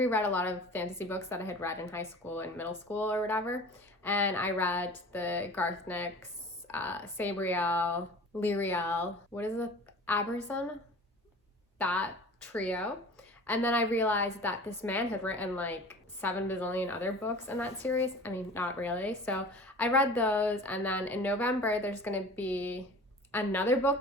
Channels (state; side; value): normal; both; correlation 0.41